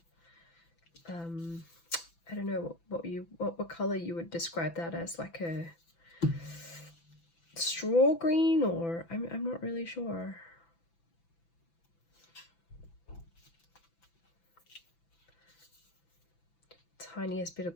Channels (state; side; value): late; right; 6.0 ms